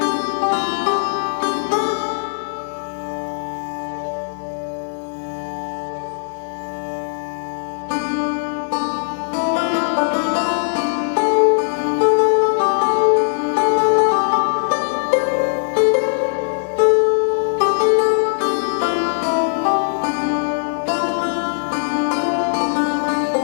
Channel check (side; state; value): right; silent; 66 dB below the other